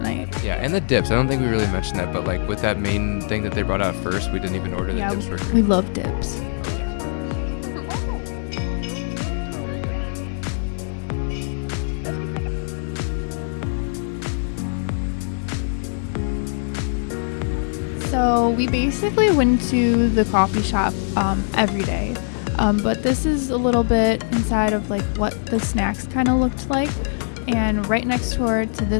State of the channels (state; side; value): silent; right; 64 dB below the other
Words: Yeah, and the dips. I don't think we really mentioned that, but like with that main thing that they brought out first, we didn't even order the dips for free. We love dips. So we basically went to the coffee shop every day. But this is a little bit inside of like what the snacks kind of looked like. And right next door to